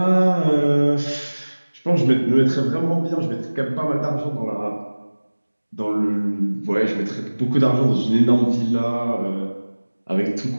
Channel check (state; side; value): inverted; both; correlation -1.00